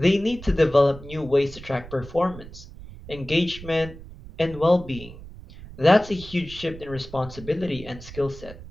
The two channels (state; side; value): noise; right; rumble, 15 dB below the sound